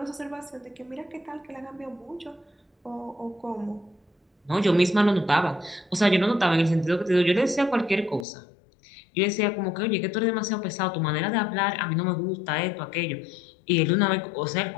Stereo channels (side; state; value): right; drops out; at 8.2 s